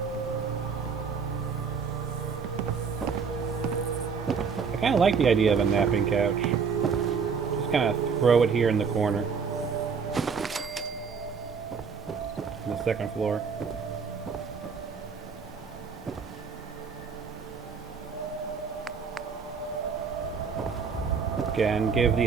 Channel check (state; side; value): quieter; left; 5.8 dB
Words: I kind of like the idea of a napping couch. Just kind of throw it here in the corner. On the second floor. Again, give